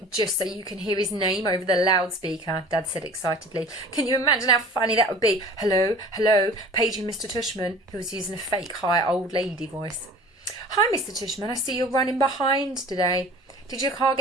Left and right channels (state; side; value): normal; both; correlation 0.44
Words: just so you can hear his name over the loudspeaker, Dad said excitedly. Can you imagine how funny that would be? Hello, hello, paging Mr. Tushman, who was using a fake high old lady voice. Hi, Mr. Tushman, I see you're running behind today. Did your car